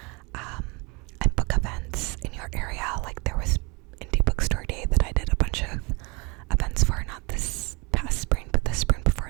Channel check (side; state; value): left; quieter; 28.8 dB